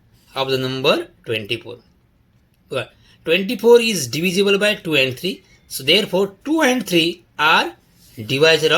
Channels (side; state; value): both; identical; correlation 1.00